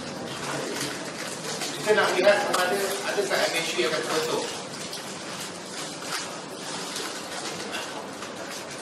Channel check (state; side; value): identical; both; correlation 1.00